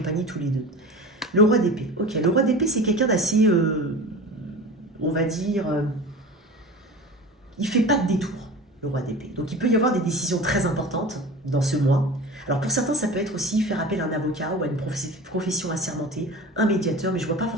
tous les deux. Le roi d'épée. Ok, le roi d'épée, c'est quelqu'un d'assez, on va dire, il fait pas de détour, le roi d'épée. Donc, il peut y avoir des décisions très importantes dans ce mois. Alors, pour certains, ça peut être aussi faire appel à un avocat ou à une profession assermentée, un médiateur, mais je ne vois pas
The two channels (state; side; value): normal; both; correlation 0.35